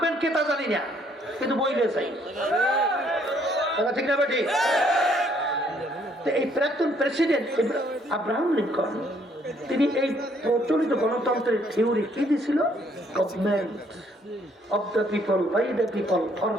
কে তা জানি না, কিন্তু বইলে চাই, ঠিক না বেটি? এই প্রাক্তন প্রেসিডেন্ট আব্রাহাম লিঙ্কন, তিনি এই প্রচলিত গণতন্ত্রের থিওরি কি দিয়েছিল? Government of the people, by the people, for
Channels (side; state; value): both; normal; correlation 0.66